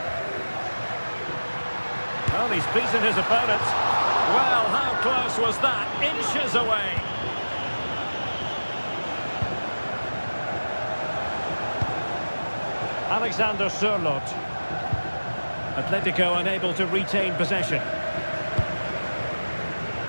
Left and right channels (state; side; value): inverted; both; correlation -1.00